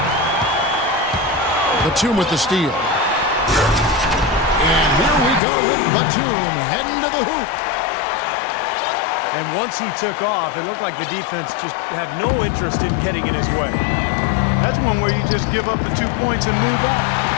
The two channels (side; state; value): right; drops out; at 5.4 s